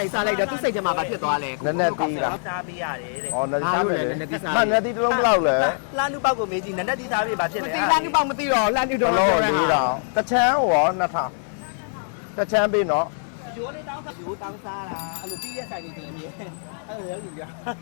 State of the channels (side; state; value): right; silent; digital silence